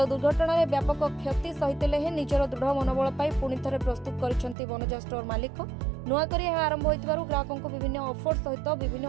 दुर्घटना रे व्यापक क्षति सहितले हे निजर दृढ़ मनोबल पाई पुणी थरे प्रस्तुत करिसेंति बनजा स्टोर मालिक। नुआ करी आरंभ होइतिबारु ग्राहकंको विभिन्न ऑफर सहित विभिन्न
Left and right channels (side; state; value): left; drops out; at 4.5 s